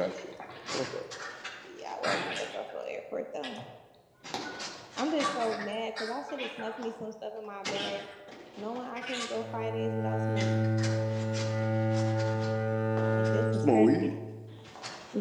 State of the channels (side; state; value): both; identical; correlation 1.00